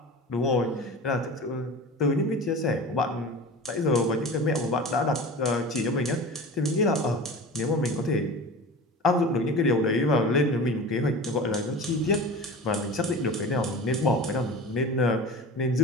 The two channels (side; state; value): both; normal; correlation 0.34